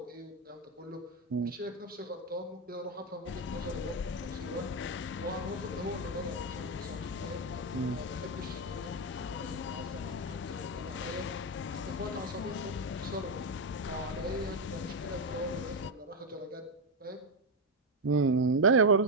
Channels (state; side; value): normal; both; correlation 0.06